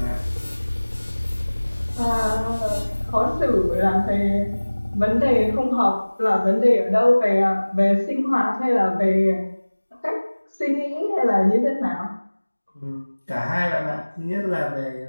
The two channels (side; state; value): both; inverted; correlation -1.00